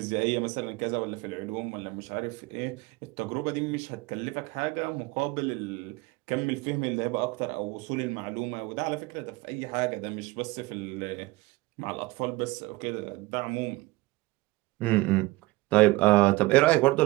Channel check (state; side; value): quieter; left; 20.7 dB